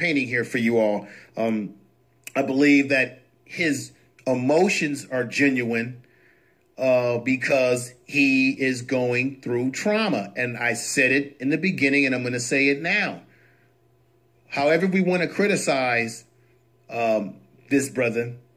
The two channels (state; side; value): identical; both; correlation 1.00